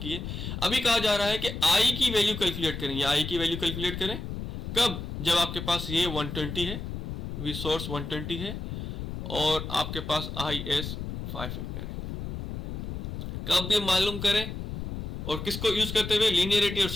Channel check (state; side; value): noise; left; rumble, 6 dB below the sound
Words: है। अभी कहा जा रहा है कि आई की वैल्यू कैलकुलेट करें, या आई की वैल्यू कैलकुलेट करें कब, जब आपके पास ये 120 है, वी सोर्स 120 है और आपके पास आई एस 5 एम्पेयर है। कब भी मालूम करें, और किसको यूज करते हुए, लीनियरिटी और